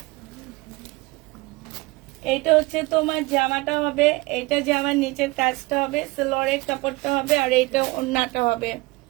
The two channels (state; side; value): quieter; left; 22.9 dB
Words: এইটা হচ্ছে তোমার জামাটা হবে, এটা জামার নিচের কাজটা হবে, সেলোয়ারের কাপড়টা হবে, আর এইটা ওড়নাটা হবে।